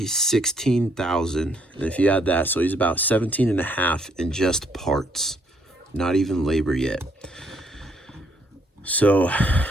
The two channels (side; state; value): both; normal; correlation 0.69